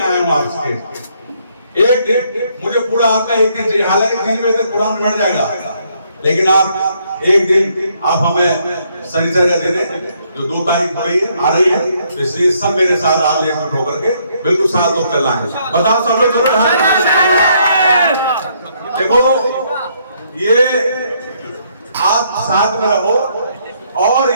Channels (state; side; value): inverted; both; correlation -0.71